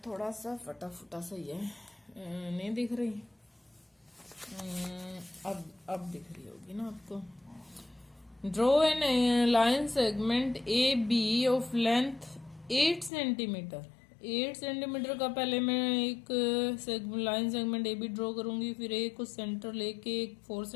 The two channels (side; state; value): right; drops out; at 13.1 s